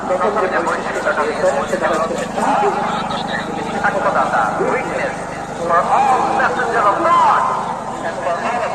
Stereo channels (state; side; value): identical; both; correlation 1.00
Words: প্রথম যে বৈশিষ্ট্যটা দিয়েছেন সেটা হচ্ছে সাক্ষ্যদাতা, witness for all messenger of God and for all of